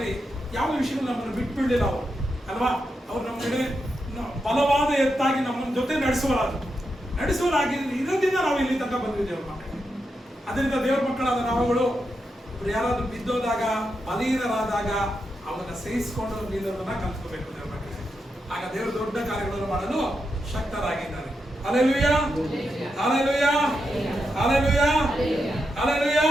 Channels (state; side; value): normal; both; correlation 0.86